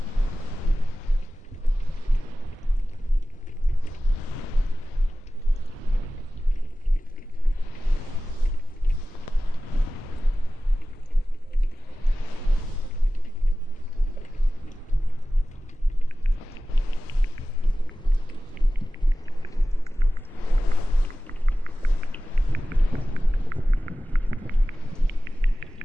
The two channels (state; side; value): normal; both; correlation 0.95